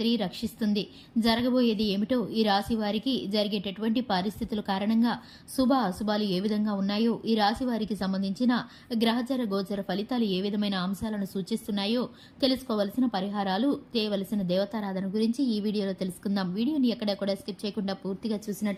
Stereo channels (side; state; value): both; identical; correlation 1.00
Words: రక్షిస్తుంది. జరగబోయేది ఏమిటో, ఈ రాశి వారికి జరిగేటటువంటి పరిస్థితుల కారణంగా శుభ అశుభాలు ఏ విధంగా ఉన్నాయో, ఈ రాశి వారికి సంబంధించిన గ్రహచర గోచర ఫలితాలు ఏ విధమైన అంశాలను సూచిస్తున్నాయో తెలుసుకోవలసిన పరిహారాలు, చేయవలసిన దేవతారాధన గురించి ఈ వీడియోలో తెలుసుకుందాం. వీడియోని ఎక్కడ కూడా స్కిప్ చేయకుండా పూర్తిగా